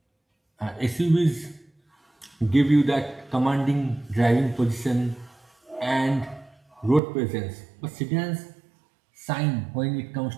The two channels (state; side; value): drops out; left; at 7.0 s